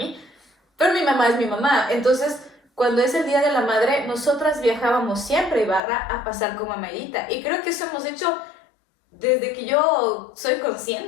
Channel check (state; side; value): drops out; right; at 5.8 s